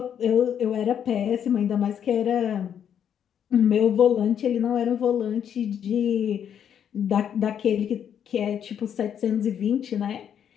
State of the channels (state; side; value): quieter; right; 8.8 dB